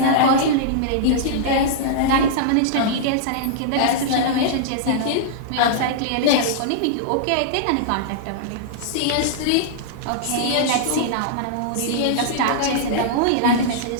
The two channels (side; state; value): both; different; correlation -0.02